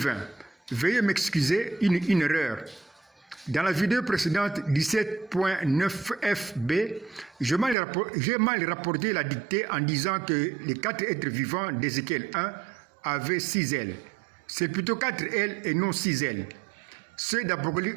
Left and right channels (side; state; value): left; drops out; at 7.8 s